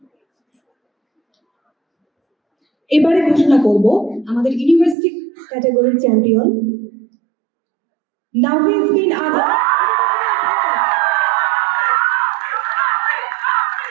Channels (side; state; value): left; drops out; at 5.0 s